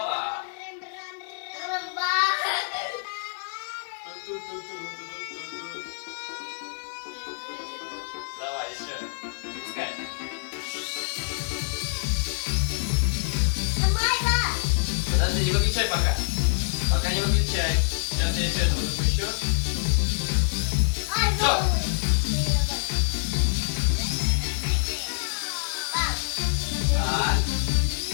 Давай еще. Запускай. Подожди, не выключай пока. Пока не выключай. Сейчас я еще этого запущу. Так.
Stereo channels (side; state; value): right; silent; digital silence